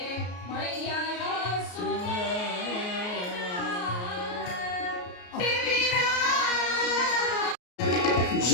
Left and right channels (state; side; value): late; right; 33 ms